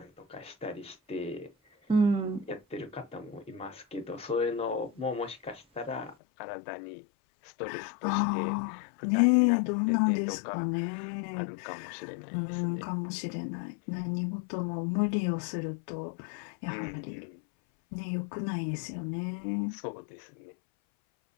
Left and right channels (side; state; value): right; drops out; at 6.2 s